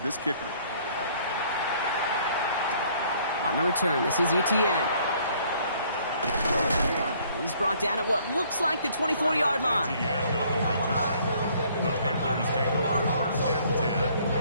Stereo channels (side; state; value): both; inverted; correlation -0.61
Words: kicker. On the return, this is Etienne. He's brought down at what looks like the 24-yard line. Etienne on the return. The Panthers take over 1st and 10